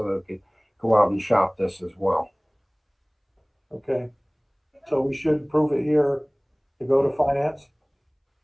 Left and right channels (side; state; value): both; identical; correlation 1.00